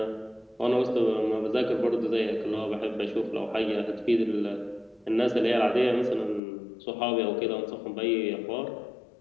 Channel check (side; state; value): right; drops out; at 6.4 s